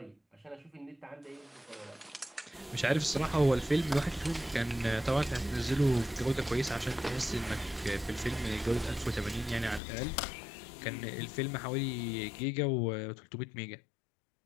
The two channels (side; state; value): right; drops out; at 9.8 s